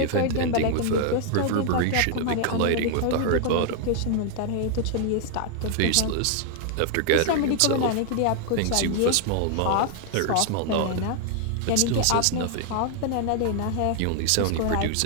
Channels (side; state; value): both; different; correlation 0.00